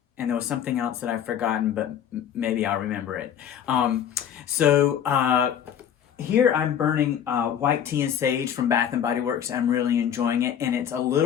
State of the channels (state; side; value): quieter; right; 9.2 dB